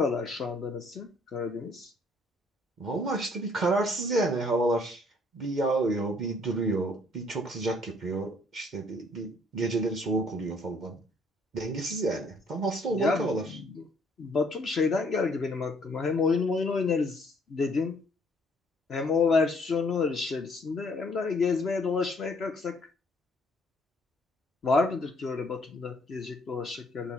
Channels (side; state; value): both; normal; correlation 0.63